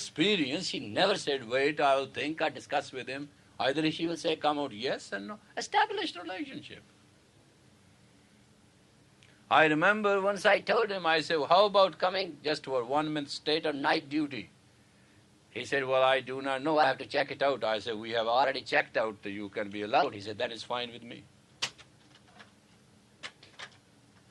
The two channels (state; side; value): identical; both; correlation 1.00